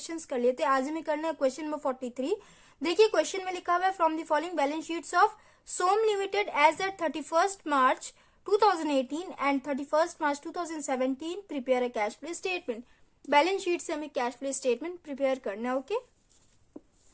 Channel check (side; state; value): both; identical; correlation 1.00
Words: कर लिए थे। आज हमें करना है क्वेश्चन नंबर 43। देखिए क्वेश्चन में लिखा हुआ है from the following balance sheets of Som limited as at 31st March 2018 and 31st March 2017 prepare a cash flow statement. Balance sheet से हमें कैश फ्लो स्टेटमेंट प्रिपेयर करना है। Okay,